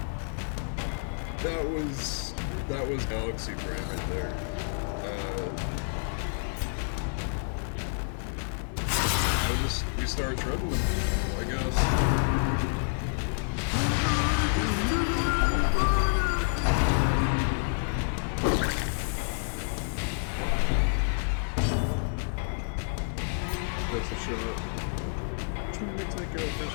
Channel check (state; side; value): silent; right; digital silence